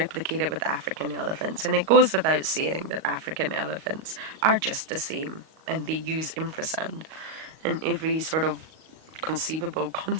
it with African elephants. And it goes without saying that African elephants are just the same, and they use infrasound in every sort of conceivable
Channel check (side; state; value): left; late; 38 ms